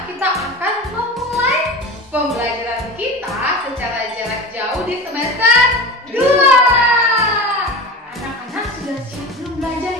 kita akan memulai pembelajaran kita secara jarak jauh di semester 2. Anak-anak sudah siap belum belajar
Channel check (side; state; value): both; normal; correlation 0.31